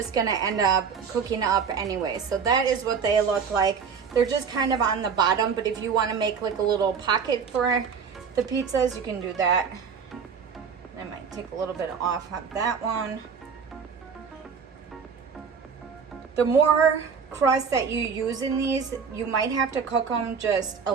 gonna end up cooking up anyway. So that is what they look like. They're just kind of on the bottom, but if you wanna make like a little pocket for the pizzas, you can do that. I might take a little bit off of that one. The more crust that you use in these, you might have to cook them just a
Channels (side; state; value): left; quieter; 6.2 dB